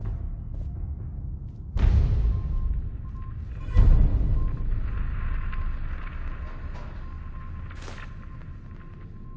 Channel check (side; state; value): both; identical; correlation 1.00